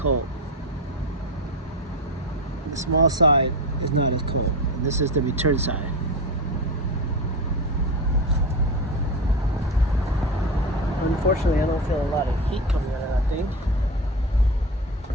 The small side is not as cold. And this is the return side. Unfortunately, I don't feel a lot of heat coming out of that thing.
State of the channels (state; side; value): normal; both; correlation 0.21